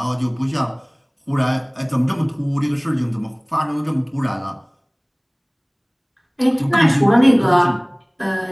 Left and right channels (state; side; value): identical; both; correlation 1.00